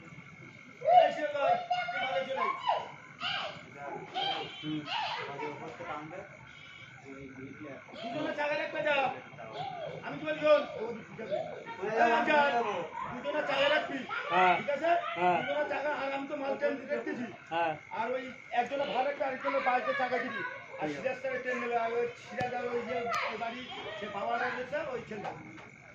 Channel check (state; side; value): identical; both; correlation 1.00